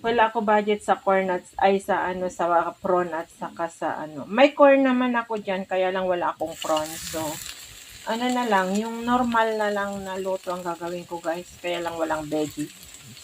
ako budget sa corn at sa prawn at saka sa May corn naman ako diyan kaya lang wala akong prawn. So na lang, yung normal na lang na luto ang gagawin ko guys. Kaya lang walang veggie.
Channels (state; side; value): identical; both; correlation 1.00